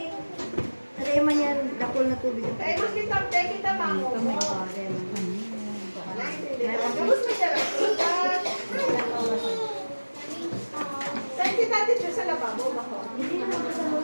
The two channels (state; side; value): inverted; both; correlation -1.00